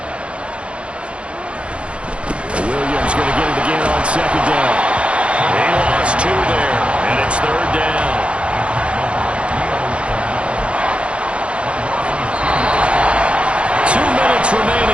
Williams going to get it again on 2nd down. They lost 2 there, and it's 3rd down.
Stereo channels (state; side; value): late; left; 0.059 ms